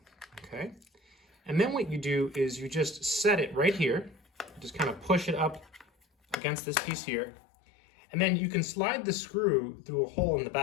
okay? And then what you do is you just set it right here, just kind of push it up against this piece here, and then you can slide the screw through a hole in the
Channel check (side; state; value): right; drops out; at 6.4 s